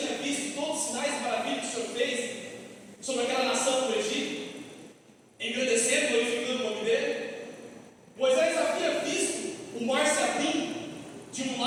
visto todos os sinais e maravilhas que o Senhor fez sobre aquela nação do Egito, engrandecendo, glorificando o nome dele. Moisés havia visto o mar se abrindo de um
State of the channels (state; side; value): identical; both; correlation 1.00